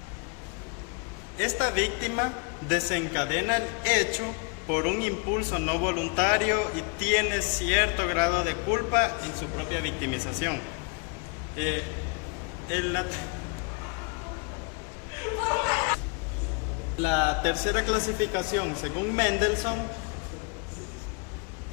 Esta víctima desencadena el hecho por un impulso no voluntario y tiene cierto grado de culpa en su propia victimización. La tercera clasificación, según Mendelssohn,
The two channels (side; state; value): right; quieter; 33.7 dB